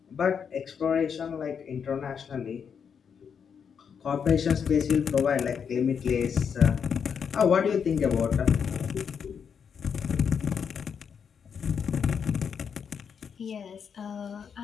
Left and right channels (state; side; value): quieter; right; 7.0 dB